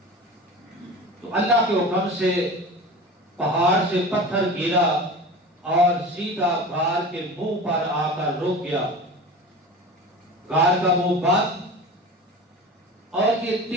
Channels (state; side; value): normal; both; correlation 0.34